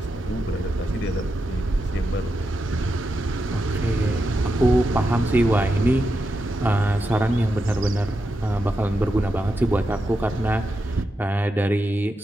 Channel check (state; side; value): normal; both; correlation 0.86